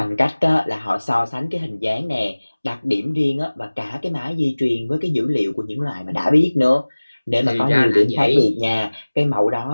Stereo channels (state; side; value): inverted; both; correlation -1.00